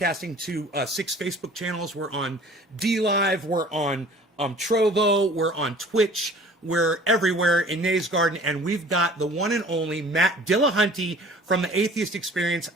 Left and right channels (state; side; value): normal; both; correlation 0.48